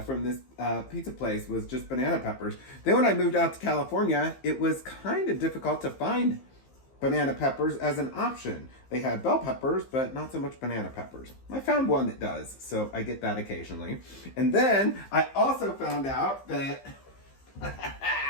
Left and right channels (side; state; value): right; late; 15 ms